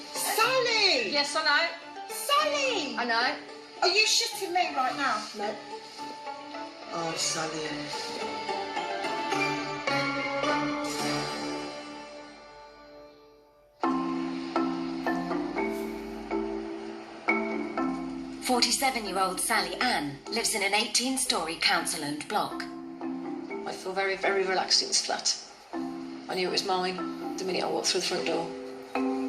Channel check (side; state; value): both; identical; correlation 1.00